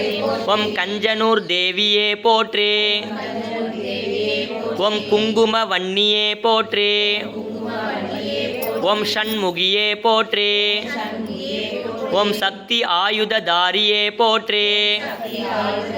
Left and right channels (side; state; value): both; identical; correlation 1.00